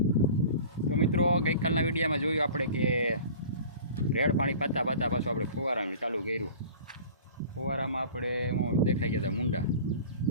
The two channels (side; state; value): both; inverted; correlation -0.42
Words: તો મિત્રો ગઈકાલના વિડીયોમાં જોયું આપણે કે રેડ પાણી પાતા પાતા પાછું આપણે ફુવારાનું ચાલુ કર્યું। ફુવારામાં આપણે દેખાઈ ગયા હતા મુંડા,